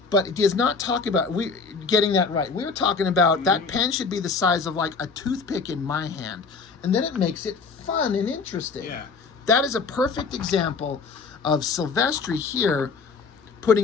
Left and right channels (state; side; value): quieter; right; 4.8 dB